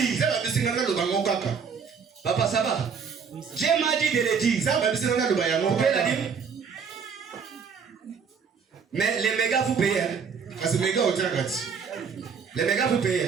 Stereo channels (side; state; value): left; quieter; 6.2 dB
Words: Papa, ça va? Dieu m'a dit de le dire. Vous pouvez la dire? Mais les mégas vous payez. Les mégas vous